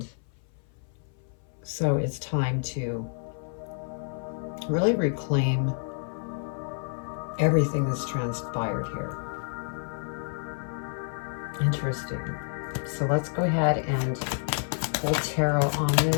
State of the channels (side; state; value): right; silent; 56 dB below the other